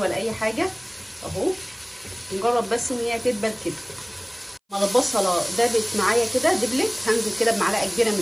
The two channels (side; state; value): both; identical; correlation 1.00